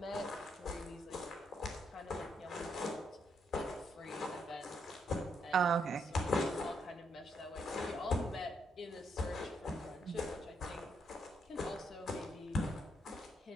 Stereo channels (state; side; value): normal; both; correlation 0.76